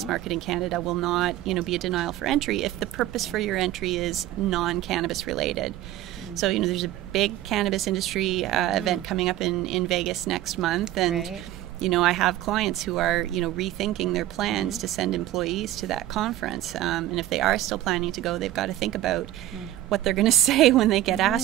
market in Canada will not, be a denial for entry if the purpose for your entry is non-cannabis related. So, there's a big cannabis industry event coming up in Vegas next month, and I have clients who are, rethinking their plans to send employees to that conference. And if they are still planning to go, they've got to think about what they're going to say when they get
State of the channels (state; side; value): quieter; left; 14.1 dB